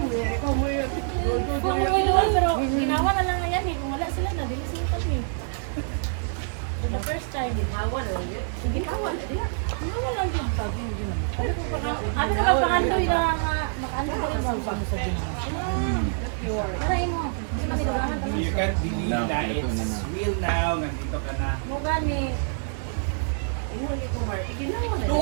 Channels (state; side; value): silent; left; digital silence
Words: Pero ginawa na lang yan eh. Kung wala sila na, dili sila kami. For the first time. Ginawa na lang yun. Ginawa na lang. Ginawa lang yun. Ano na magpakandoy na makaano ko rin ba sa ginawa? Tarayin mo. Hindi man nilabangan ka You can't believe No, na ito na it's na. real now. Nandito ka na. mo gani.